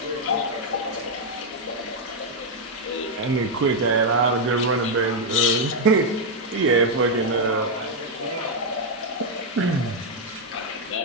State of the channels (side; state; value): both; normal; correlation 0.00